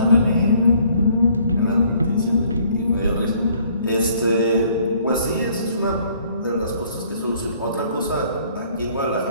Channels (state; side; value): inverted; both; correlation -0.61